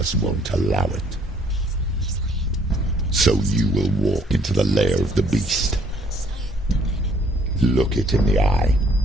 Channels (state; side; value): normal; both; correlation 0.63